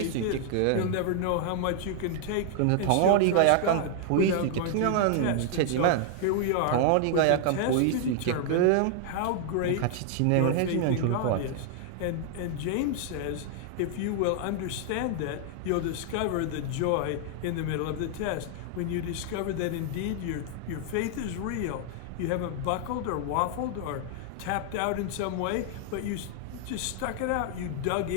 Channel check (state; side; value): different; both; correlation 0.00